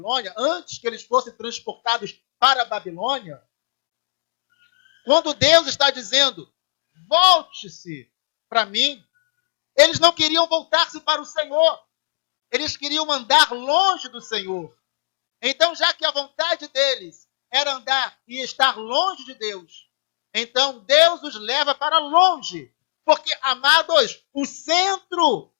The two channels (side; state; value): right; silent; digital silence